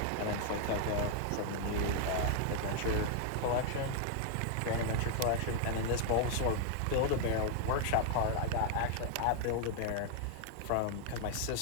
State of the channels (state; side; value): different; both; correlation 0.00